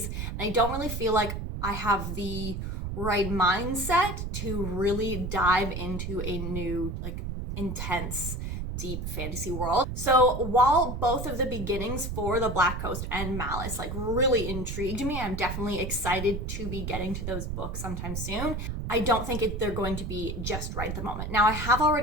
and I don't really feel like I have the right mindset to really dive into a new, like, intense, deep fantasy world. So while both of the beginnings for the Black Coast and Malice like really intrigued me, I'm definitely excited to be getting to those books sometime soon, I don't think they're going to be just right at the moment. Now, I have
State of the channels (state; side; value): noise; right; rumble, 4 dB below the sound